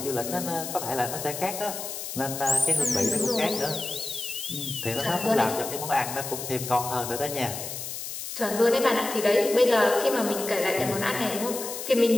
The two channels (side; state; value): left; noise; hiss, 7 dB below the sound